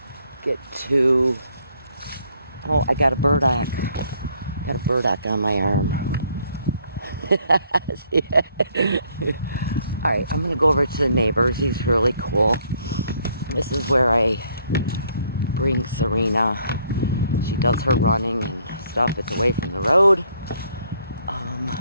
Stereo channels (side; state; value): both; inverted; correlation -0.67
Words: to. Oh, I got a burdock. Got a burdock on my arm. Alright, I'm going to go over to the neighbors. He's really cool. This is where I bring Serena. She does her running and stuff. It's away from the road.